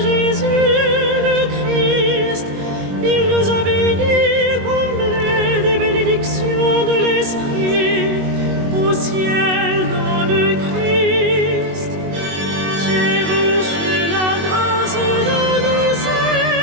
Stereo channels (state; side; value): late; left; 21 ms